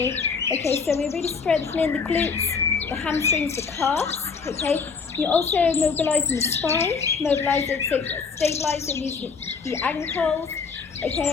Okay, so we're really strengthening the glutes, the hamstrings, the calves. Okay, you're also mobilising the spine, stabilising the ankles.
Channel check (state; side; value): quieter; right; 5.2 dB